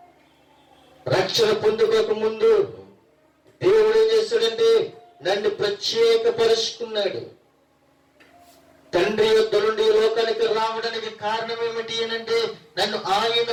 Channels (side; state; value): both; identical; correlation 1.00